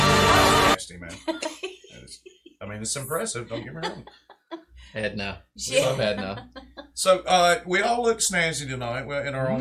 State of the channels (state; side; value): identical; both; correlation 1.00